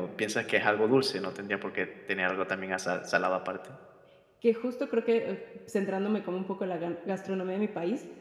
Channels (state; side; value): identical; both; correlation 1.00